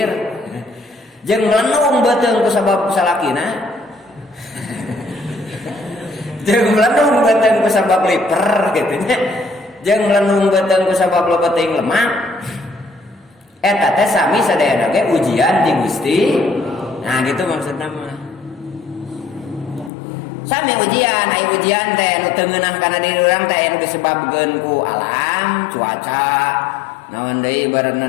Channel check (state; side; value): drops out; right; at 19.9 s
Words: Jeung melenung beuteung ku sabab salakina. Jeung melenung beuteung ku sabab liper kitu nya. Jeung melenung beuteung ku sabab loba teuing lemak. Eta teh sami sadayana ge ujian di Gusti. Nah gitu maksudna mah. Sami ujian, aya ujian teh nu teu ngeunah kana diri urang teh anu disebabkeun ku alam, cuaca, naon deui ibaratna